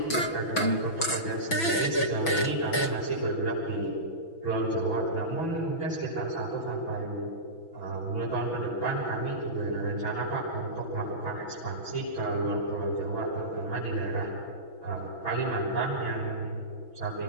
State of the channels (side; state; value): right; late; 6.1 ms